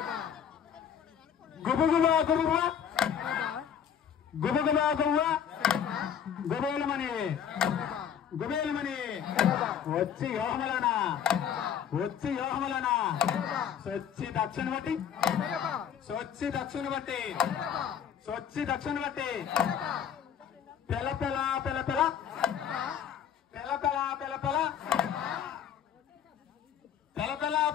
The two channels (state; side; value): quieter; right; 8.5 dB